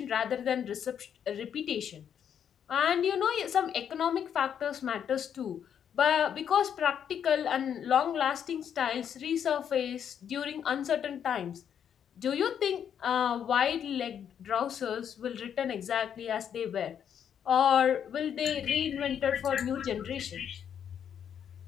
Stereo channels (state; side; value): quieter; right; 8.6 dB